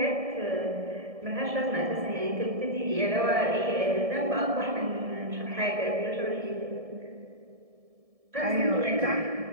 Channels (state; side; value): late; left; 1.7 ms